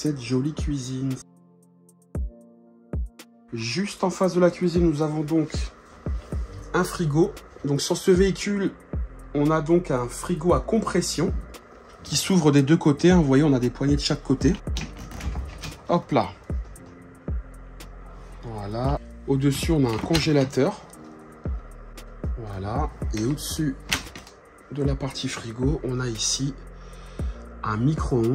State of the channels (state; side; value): identical; both; correlation 1.00